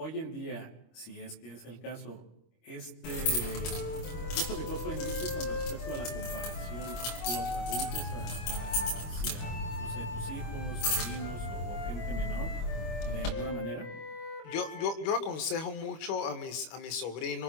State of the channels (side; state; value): right; late; 25 ms